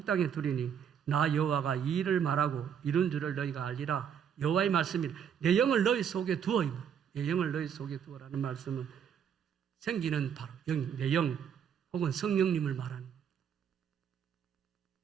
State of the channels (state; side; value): quieter; left; 8.1 dB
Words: 땅에 두리니 나 여호와가 이 일을 말하고 이룬 줄을 너희가 알리라. 여호와의 말씀이 내 영을 너희 속에 두어, 내 영을 너희 속에 두어라는 말씀은 생기는 바로 영, 내 영 혹은 성령님을 말하는